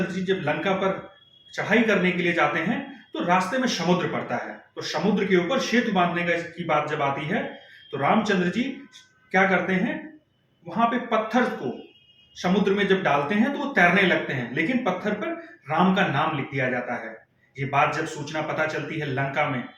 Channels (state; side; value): identical; both; correlation 1.00